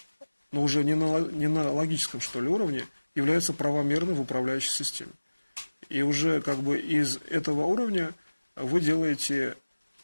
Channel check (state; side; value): inverted; both; correlation -1.00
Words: но уже не на логическом, что ли, уровне, является правомерной в управляющей системе. И уже как бы из этого уровня вы делаете